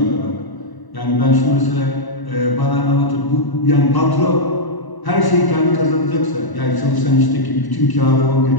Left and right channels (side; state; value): right; late; 1.0 ms